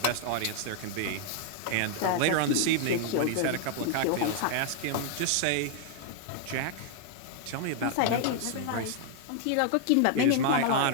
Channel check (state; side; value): different; both; correlation 0.00